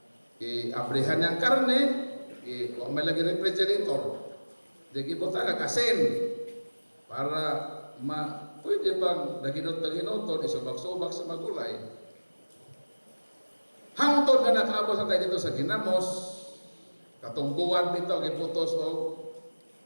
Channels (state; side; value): inverted; both; correlation -1.00